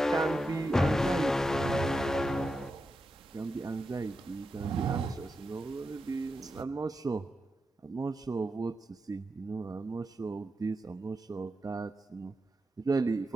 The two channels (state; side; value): normal; both; correlation 0.88